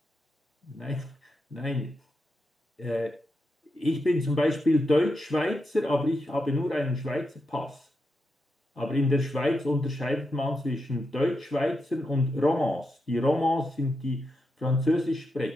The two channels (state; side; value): normal; both; correlation 0.86